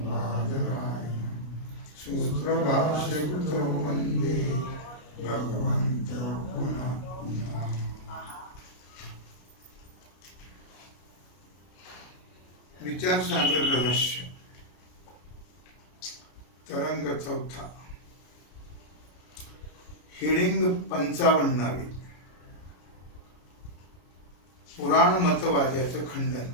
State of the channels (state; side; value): late; right; 33 ms